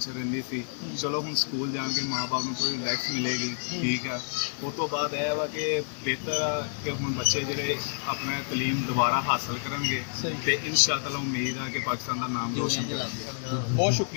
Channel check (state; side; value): silent; right; 59 dB below the other